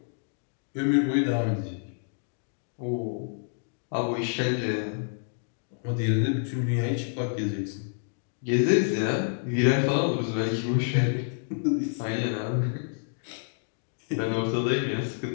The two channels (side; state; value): right; silent; digital silence